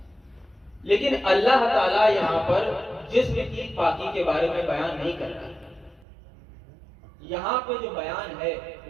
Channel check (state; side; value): drops out; left; at 6.1 s